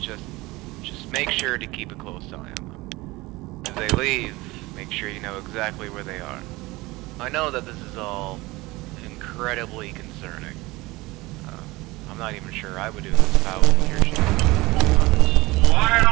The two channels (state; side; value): quieter; left; 21.3 dB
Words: make sure to keep a close eye on them. As they leave, make sure you know exactly where they are. I know that this is all incredibly concerning. I'm not even sure I would do this if I was in your shoes.